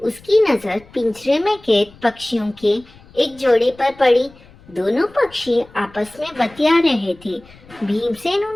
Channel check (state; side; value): noise; left; rumble, 25 dB below the sound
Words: नजर पिंजरे में कैद पक्षियों के एक जोड़े पर पड़ी। दोनों पक्षी आपस में बतिया रहे थे। भीमसेन